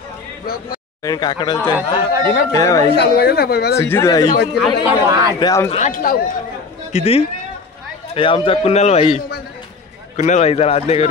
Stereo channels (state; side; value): quieter; right; 4.5 dB